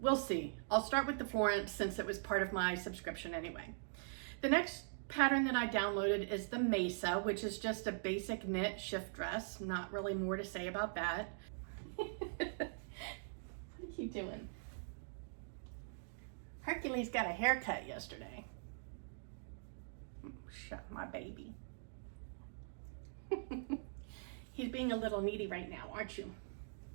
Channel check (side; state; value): left; silent; digital silence